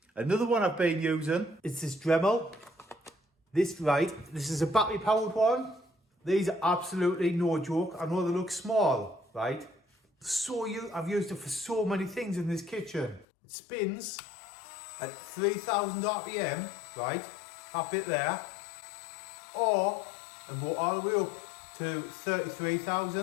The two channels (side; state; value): right; drops out; at 13.2 s